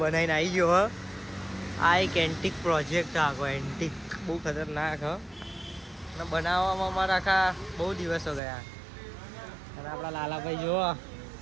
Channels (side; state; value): left; drops out; at 8.4 s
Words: આવી ગયો આ એક એન્ટિક પ્રોજેક્ટ આખો એન્ટિક બહુ ખતરનાક અને બનાવવામાં અમારા આખા બહુ દિવસો ગયા અને આપણા લાલાભાઈ જો